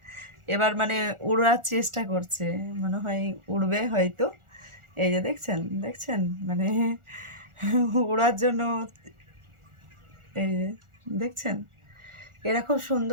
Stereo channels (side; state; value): left; late; 1.4 ms